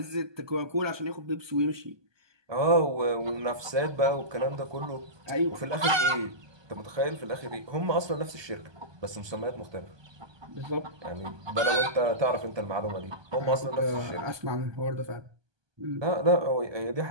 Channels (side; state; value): left; late; 1.2 ms